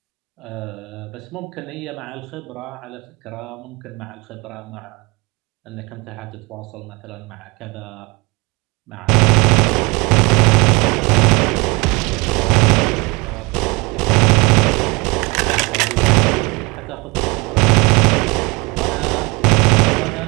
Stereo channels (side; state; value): left; quieter; 25.6 dB